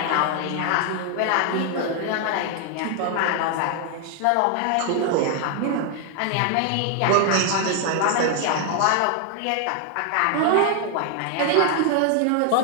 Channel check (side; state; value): both; different; correlation 0.00